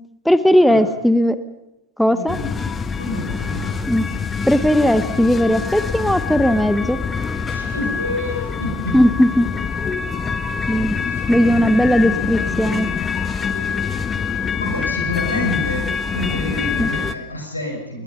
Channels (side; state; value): both; normal; correlation 0.83